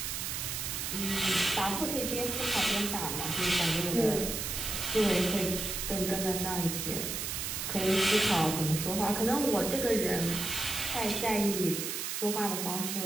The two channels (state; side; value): noise; right; hiss, 3 dB below the sound